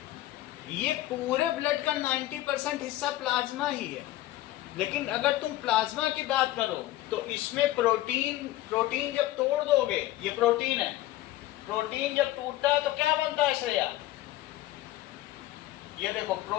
ये पूरे ब्लड का 90% हिस्सा प्लाज्मा ही है। लेकिन अगर तुम प्लाज्मा की बात करो तो इसमें प्रोटीन जब तोड़ दोगे, ये प्रोटीन है, प्रोटीन जब टूटता है तो क्या बनता है श्रेया? ये देखो,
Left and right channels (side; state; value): right; quieter; 15.6 dB